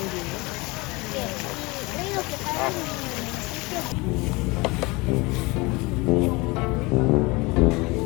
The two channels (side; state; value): right; quieter; 24.8 dB